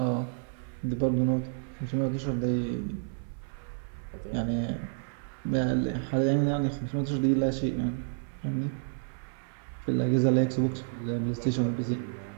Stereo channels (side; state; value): left; silent; 58 dB below the other